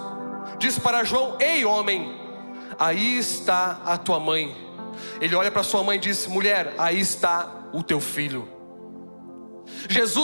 diz para João: ei homem, aí está a tua mãe. Ele olha para sua mãe e diz: mulher, aí está o teu filho.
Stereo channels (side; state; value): both; inverted; correlation -1.00